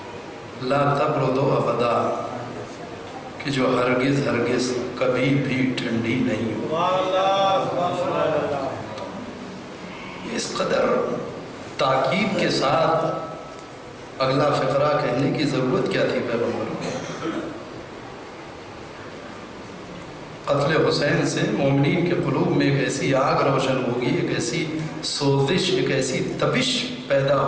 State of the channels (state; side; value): identical; both; correlation 1.00